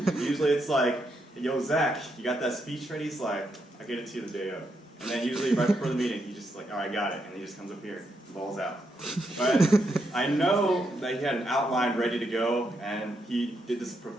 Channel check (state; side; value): normal; both; correlation 0.80